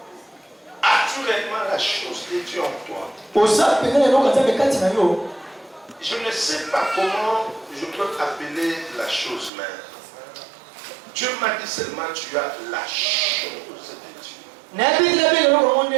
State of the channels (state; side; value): drops out; left; at 9.5 s